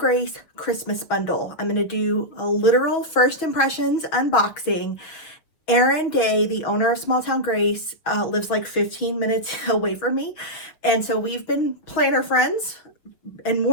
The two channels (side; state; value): right; late; 6.2 ms